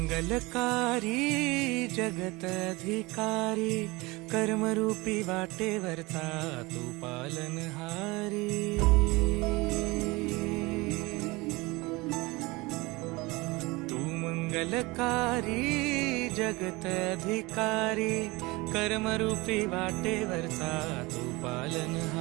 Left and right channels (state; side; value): quieter; left; 23.3 dB